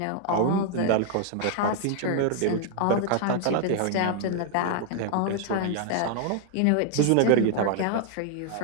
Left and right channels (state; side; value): different; both; correlation 0.00